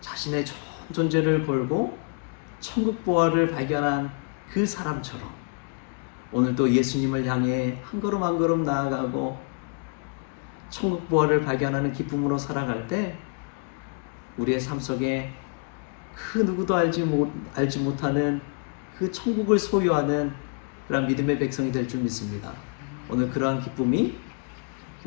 전 존재를 걸고 천국 보화를 발견한 그 사람처럼 오늘도 예수님을 향해 한 걸음 한 걸음 나아가고 천국 보화를 발견하는 기쁨으로 살아갈 때 우리의 삶 속에 그 누구도 알지 못하는 그 천국을 소유하는 그런 믿음의 백성이 될 줄 믿습니다. 오늘 그러한 기쁨이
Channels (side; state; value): right; quieter; 36.3 dB